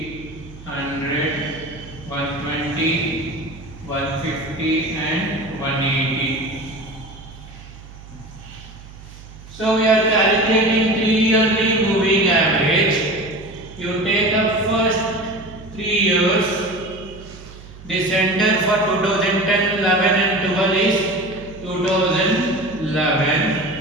100, 120, 150 and 180. So we are calculating 3-yearly moving average. You take up first 3 years. The center for 2010, 11 and 12 is 2011.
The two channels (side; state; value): right; noise; hum, 18 dB below the sound